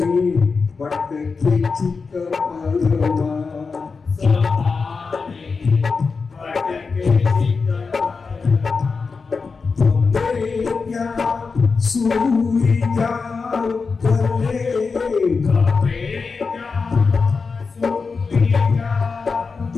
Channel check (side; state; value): right; quieter; 4.7 dB